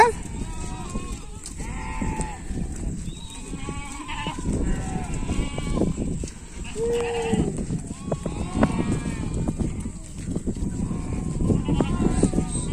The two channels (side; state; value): both; identical; correlation 1.00